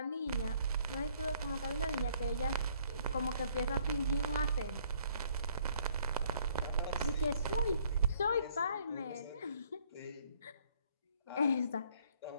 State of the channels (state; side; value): inverted; both; correlation -0.63